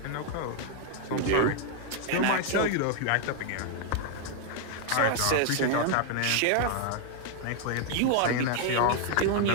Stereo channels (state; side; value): different; both; correlation 0.00